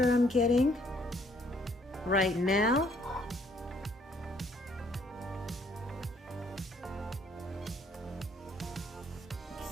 I'm getting right now.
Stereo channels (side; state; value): both; normal; correlation 0.65